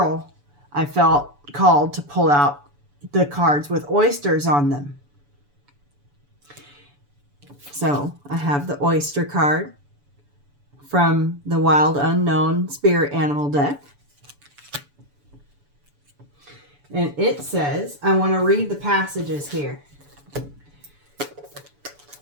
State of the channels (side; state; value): left; late; 7.0 ms